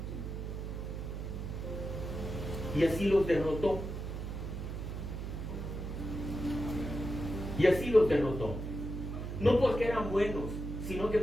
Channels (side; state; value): right; noise; hum, 5 dB below the sound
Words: Y así los derrotó. Y así los derrotó. No porque eran buenos, sino que